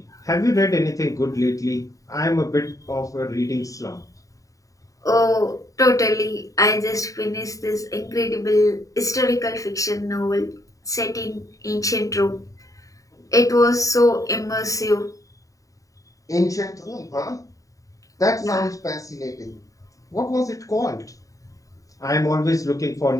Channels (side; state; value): right; late; 0.16 ms